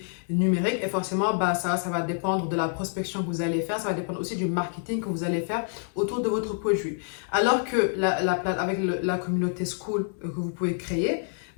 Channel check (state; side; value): silent; right; 58 dB below the other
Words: numérique, et forcément, ça va dépendre de la prospection que vous allez faire, ça va dépendre aussi du marketing que vous allez faire autour de votre produit. Alors que avec la communauté Skool que vous pouvez créer,